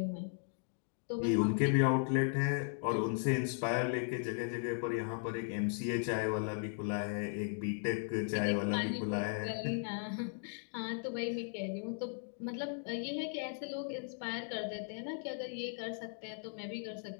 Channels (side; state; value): right; silent; digital silence